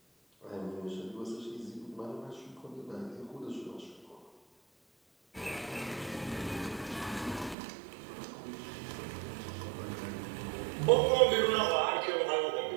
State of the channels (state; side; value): drops out; left; at 7.6 s